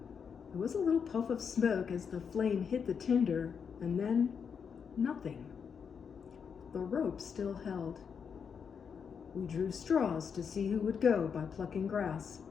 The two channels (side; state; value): right; quieter; 6.6 dB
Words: There was a little puff of smoke as the flame hit the tinder, and then nothing. The rope still held. We drew straws to see who would go by plucking grass.